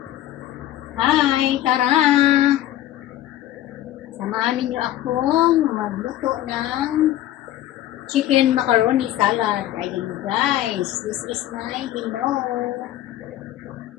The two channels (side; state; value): right; quieter; 13.6 dB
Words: Hi! Tara! Samahan ninyo akong magluto ng chicken macaroni salad. Ayun guys, this is my window.